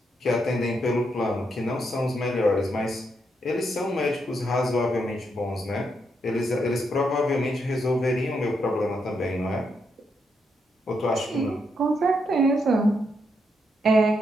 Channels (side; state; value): both; normal; correlation 0.80